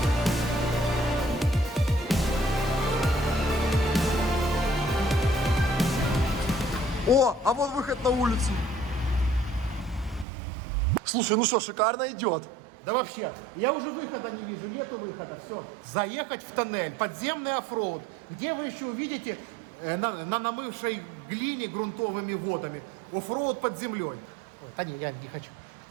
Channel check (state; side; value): drops out; left; at 10.2 s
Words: О, а вот выход на улицу. Слушай, ну что, шикарно идет. Да вообще, я уже выхода не вижу, нету выхода, все. Заехать в тоннель, подземный оффроуд, где вы еще увидите на намывшей глине грунтовыми водами оффроуд под землей. Да не, я не хочу.